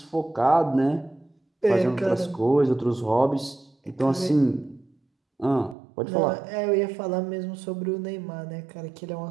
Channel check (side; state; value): left; drops out; at 5.8 s